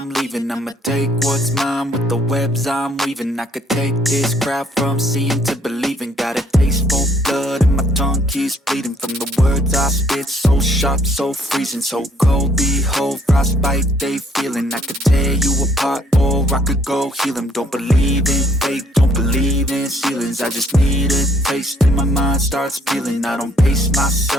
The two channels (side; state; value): both; normal; correlation 0.64